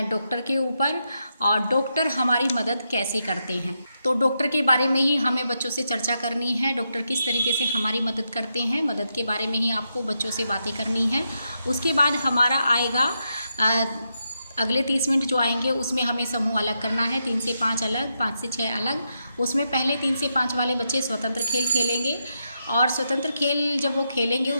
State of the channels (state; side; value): inverted; both; correlation -0.83